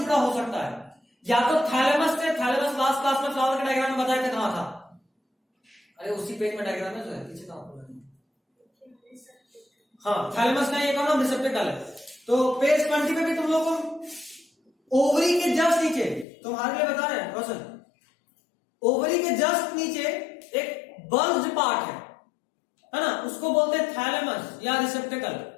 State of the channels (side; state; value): right; drops out; at 16.2 s